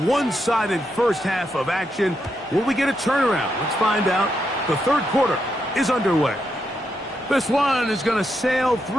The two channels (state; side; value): normal; both; correlation 0.82